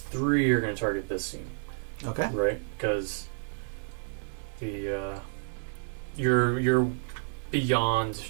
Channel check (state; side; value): silent; left; digital silence